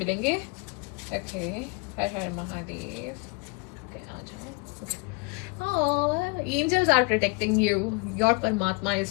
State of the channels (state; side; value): quieter; right; 28.9 dB